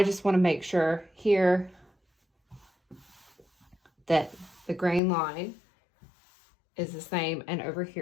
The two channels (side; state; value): right; drops out; at 5.0 s